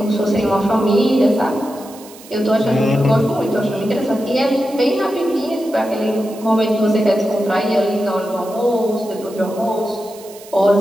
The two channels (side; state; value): right; noise; hiss, 20 dB below the sound